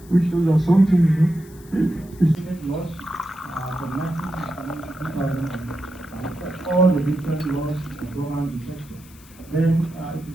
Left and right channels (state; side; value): noise; left; hiss, 24 dB below the sound